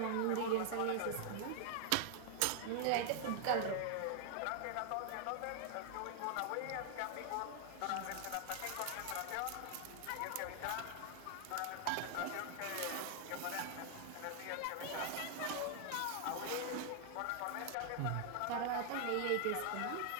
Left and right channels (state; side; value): different; both; correlation 0.00